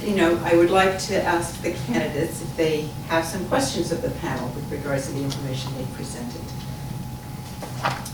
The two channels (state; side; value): identical; both; correlation 1.00